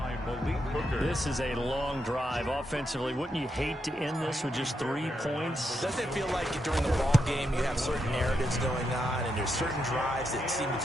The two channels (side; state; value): both; normal; correlation 0.83